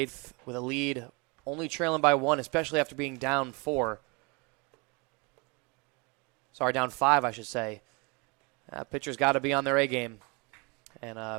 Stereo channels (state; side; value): quieter; left; 29.5 dB